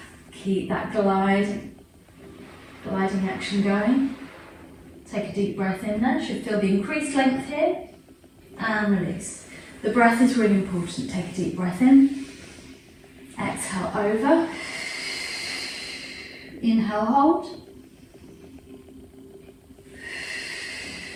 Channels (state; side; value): identical; both; correlation 1.00